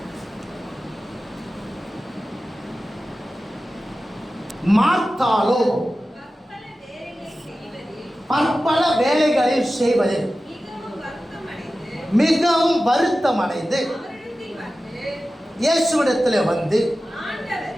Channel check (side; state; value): both; normal; correlation 0.95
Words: மார்த்தாளோ பற்பல வேலைகளில் செய்வதில் மிகவும் வருத்தமடைந்து இயேசுவிடத்தில் வந்து,